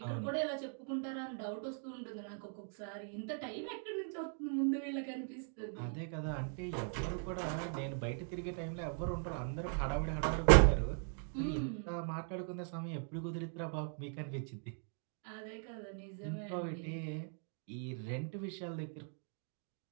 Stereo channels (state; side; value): silent; left; 51 dB below the other